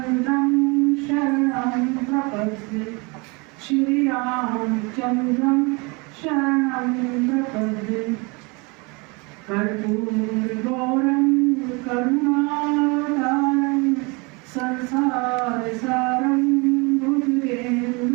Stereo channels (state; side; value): quieter; left; 28.7 dB